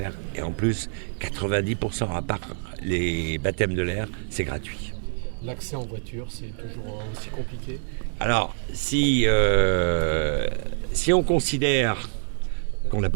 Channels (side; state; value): left; silent; 59 dB below the other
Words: Et en plus, 90% à part les baptêmes de l'air, c'est gratuit. L'accès en voiture, c'est toujours aussi compliqué ? Alors, si on considère qu'on n'a